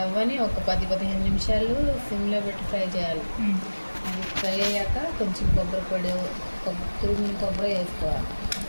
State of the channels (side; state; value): both; inverted; correlation -1.00